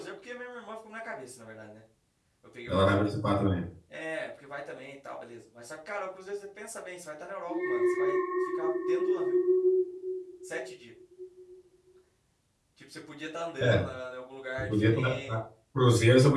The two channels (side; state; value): both; identical; correlation 1.00